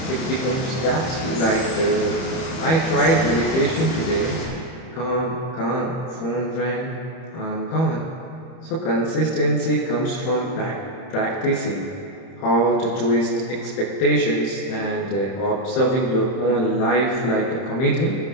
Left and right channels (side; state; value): right; late; 31 ms